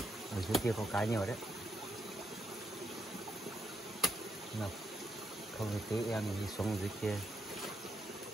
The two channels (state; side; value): normal; both; correlation 0.79